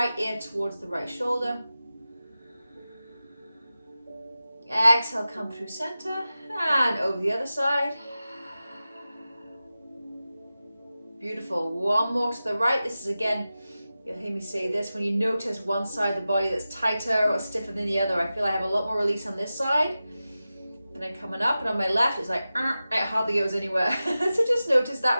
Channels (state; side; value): inverted; both; correlation -0.94